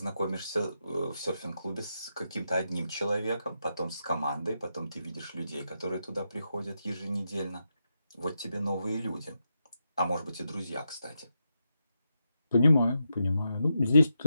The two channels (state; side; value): inverted; both; correlation -0.85